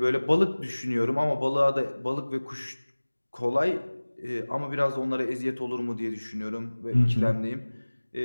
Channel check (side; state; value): both; inverted; correlation -1.00